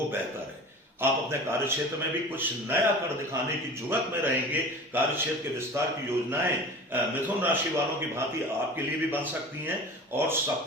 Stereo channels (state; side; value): normal; both; correlation 0.37